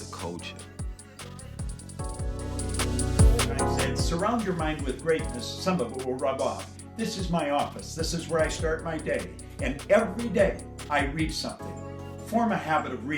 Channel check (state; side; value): identical; both; correlation 1.00